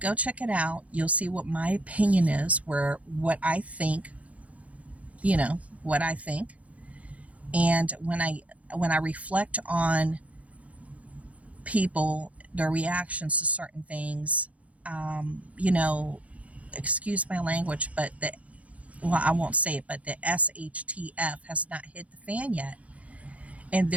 check it out. You'll see what my opinion is, what I think, what I think. And when I reflect on people, their reactions to certain things, excuse my language, but I won't say it, but the SHTF has not hit the fan yet. And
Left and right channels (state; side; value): late; left; 0.066 ms